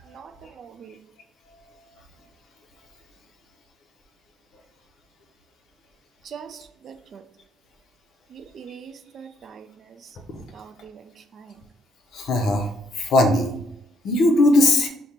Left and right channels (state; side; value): normal; both; correlation 0.71